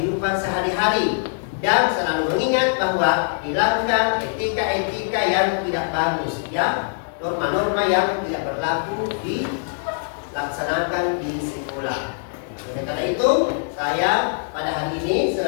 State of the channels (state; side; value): silent; right; digital silence